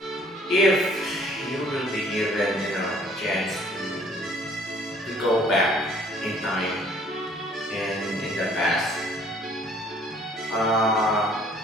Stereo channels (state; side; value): normal; both; correlation 0.58